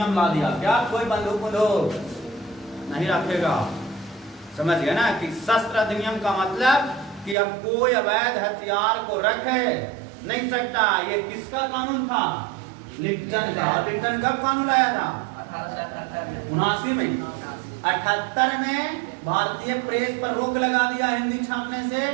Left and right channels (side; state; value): left; drops out; at 7.4 s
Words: ला दिया। क्या कोई बंदूक नहीं रखेगा? समझ गया ना कि शस्त्र अधिनियम का मतलब कि अब कोई अवैध हथियार को रख नहीं सकता। ये किसका कानून था? लिप्टन का। लिप्टन कब कानून लाया था? 1879 में। 78 में भारतीय प्रेस पर रोक लगा दिया हिंदी छापने